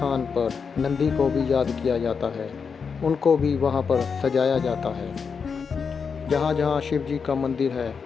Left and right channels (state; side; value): quieter; right; 5.8 dB